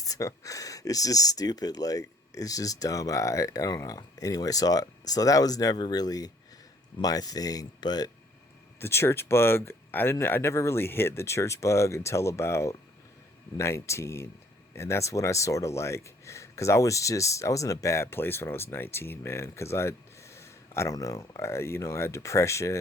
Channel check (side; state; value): both; normal; correlation 0.61